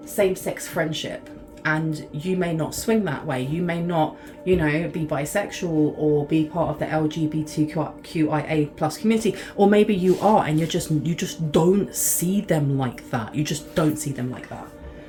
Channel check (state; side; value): identical; both; correlation 1.00